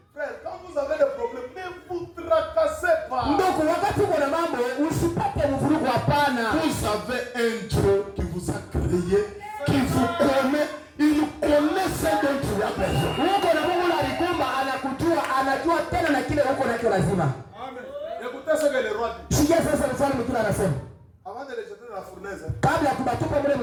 Frère, quand vous avez des problèmes, ne vous tracassez pas. Ndugu, wakati uko na mambo usipate mvurugo, hapana. Vous avez un Dieu qui vous a créé, qui vous connaît, il connaît ce dont tu as besoin. Uko na Mungu alikumba, anakujua, anajua tena na kile uko nacho lazima. Amen. Écoutez ce que le roi dit. Sikia sasa mfalme kile anasema. Avant de les jeter dans la fournaise, Kabla ya kubatupa mle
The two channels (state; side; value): identical; both; correlation 1.00